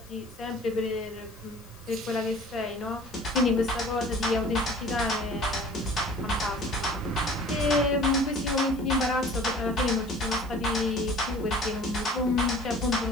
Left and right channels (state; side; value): noise; left; hiss, 24 dB below the sound